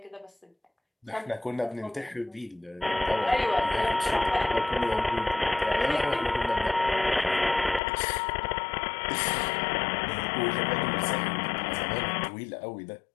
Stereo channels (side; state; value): right; drops out; at 7.8 s